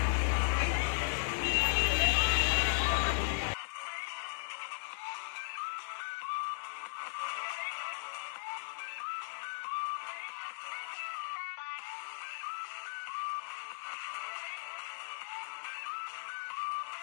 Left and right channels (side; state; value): right; silent; 53 dB below the other